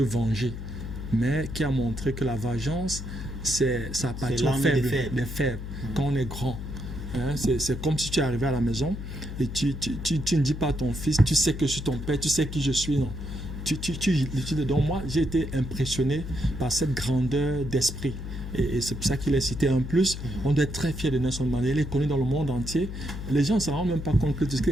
venger, mais qui a montré que la vengeance, ça appartient des faibles. Quand on est grand, hein, c'est comme si tu es arrivé à la maison et tu ne dis pas à ton fils, tu sais que je suis ton père, tu sais qui je suis, non. Donc moi, j'ai été impressionné par cette grandeur d'esprit. Et c'est pour ça qu'il est cité. En plus, on doit être très fier de Nelson Mandela. Il est connu dans le monde entier. Les gens ne se rendent même pas compte qu'il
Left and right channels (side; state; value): left; noise; hum, 8 dB below the sound